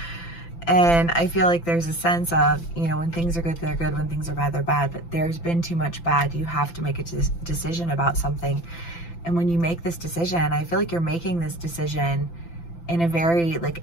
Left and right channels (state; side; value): late; right; 5.9 ms